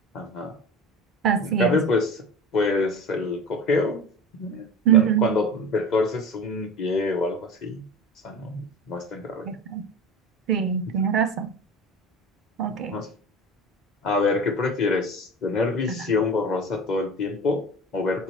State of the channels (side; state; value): both; normal; correlation 0.33